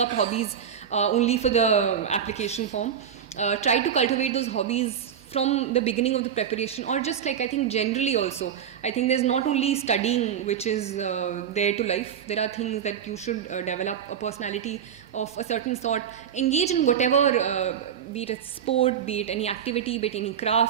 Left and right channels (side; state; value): left; quieter; 8.5 dB